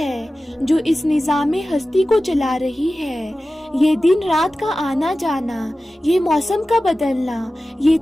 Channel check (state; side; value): normal; both; correlation 0.95